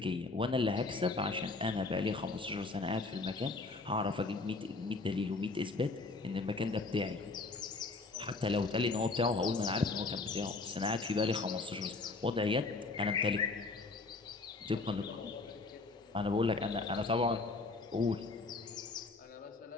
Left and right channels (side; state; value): right; quieter; 3.6 dB